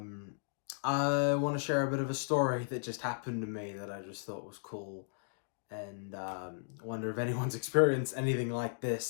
want to share a bit of a story that just happened to me that I just thought was cool, and wonder if anyone's experienced anything like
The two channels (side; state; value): right; silent; digital silence